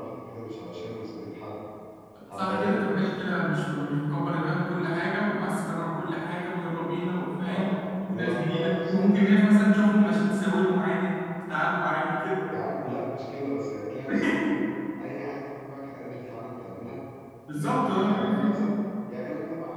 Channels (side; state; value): both; identical; correlation 1.00